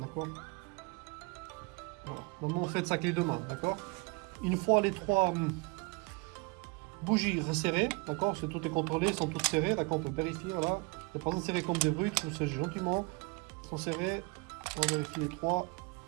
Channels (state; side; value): quieter; left; 28.6 dB